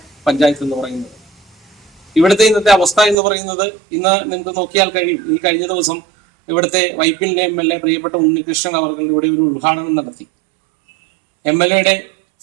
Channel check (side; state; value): left; drops out; at 3.2 s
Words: പഞ്ചായത്ത് എന്ന് പറയുന്നത്. ഇവിടുത്തെ ഇന്നത്തെ അവസ്ഥ എന്ന് പറയുന്നത് ഇന്ന് നിങ്ങൾക്ക് നോക്കിയാൽ കഴിയും. ഈ കഴിഞ്ഞ ദിവസം ഇവിടുത്തെ വൈപ്പിൻ്റെ MLA പ്രിയപ്പെട്ട ഉണ്ണികൃഷ്ണൻ അവർ ഇവിടെ ഒരു ഉദ്ഘാടനം നടത്തി. MLAയുടെ